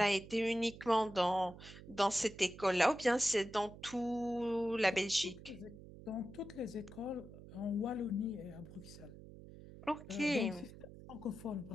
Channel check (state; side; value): noise; right; hum, 16 dB below the sound